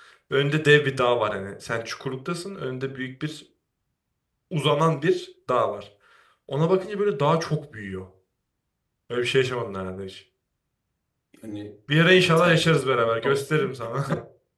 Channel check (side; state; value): both; identical; correlation 1.00